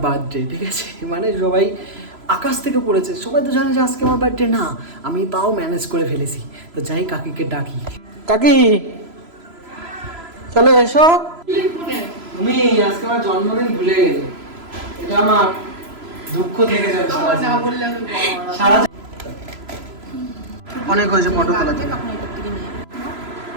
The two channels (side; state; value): left; late; 3.0 ms